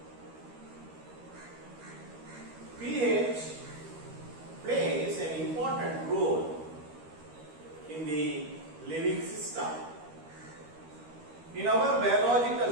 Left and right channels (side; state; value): left; late; 13 ms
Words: pH plays an important role in the living system. In our